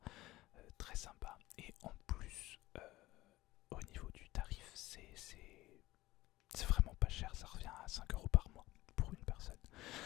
très sympa. Et en plus, au niveau du tarif, c'est vraiment pas cher, ça revient à 5 € par mois pour une personne.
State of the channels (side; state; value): right; quieter; 17.7 dB